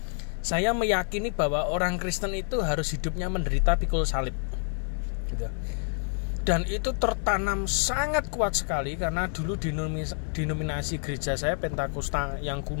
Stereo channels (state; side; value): silent; right; 59 dB below the other